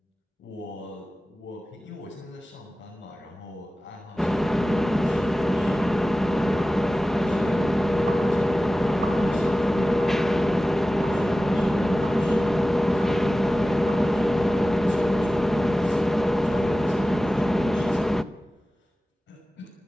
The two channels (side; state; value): both; normal; correlation 0.96